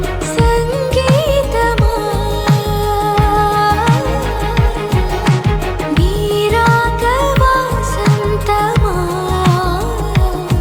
సంగీతమా నీ రాక వాసంతమా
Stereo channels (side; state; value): both; identical; correlation 1.00